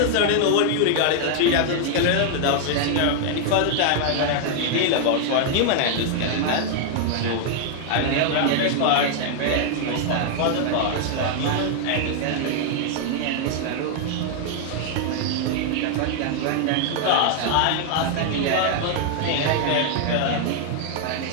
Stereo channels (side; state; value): both; different; correlation 0.00